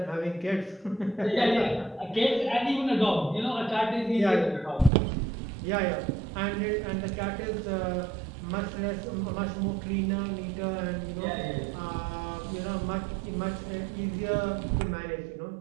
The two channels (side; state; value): left; drops out; at 4.9 s